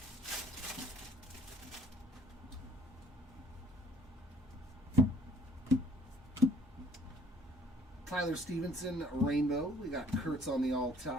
Tyler Stevenson, rainbow. We got Kurtz on the all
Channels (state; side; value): normal; both; correlation 0.58